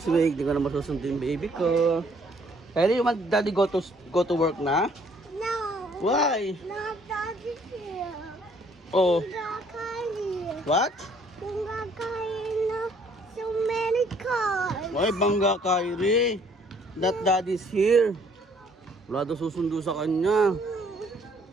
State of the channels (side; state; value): both; normal; correlation 0.62